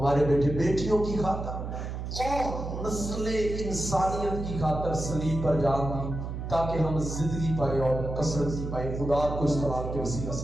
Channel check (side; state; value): right; noise; hum, 6 dB below the sound